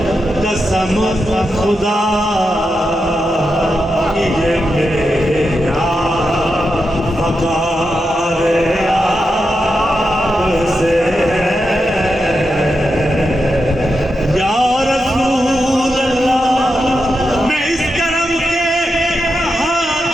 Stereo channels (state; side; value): normal; both; correlation 0.87